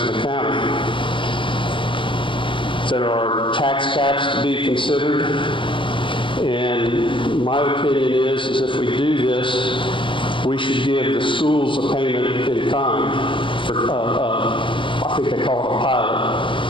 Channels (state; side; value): late; right; 0.25 ms